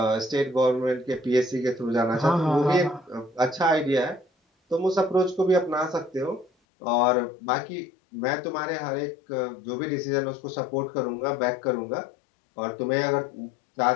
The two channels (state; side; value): drops out; right; at 6.5 s